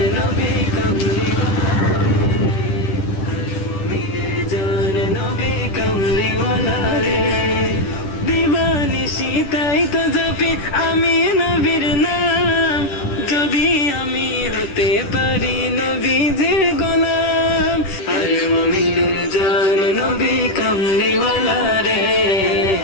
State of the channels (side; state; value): right; late; 10 ms